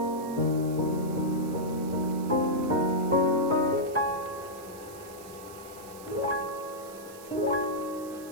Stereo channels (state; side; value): noise; right; hiss, 19 dB below the sound